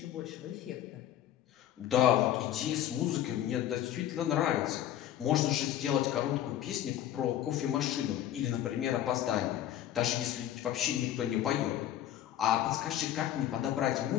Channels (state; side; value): quieter; right; 11.7 dB